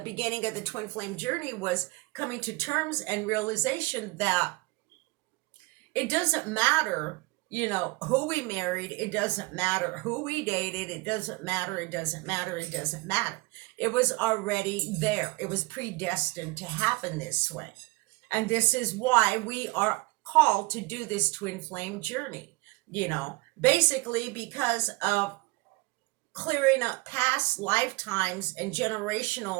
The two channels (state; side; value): quieter; left; 24.5 dB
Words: beginning of the twin flame journey, was coming to terms and realization that it doesn't matter, who we married. It doesn't matter who we dated. It doesn't matter. It doesn't matter. It doesn't matter. It was already there. It was predestined to happen this way. And this is why we are called to do this twin flame journey, basically because of clearing up past lifetimes and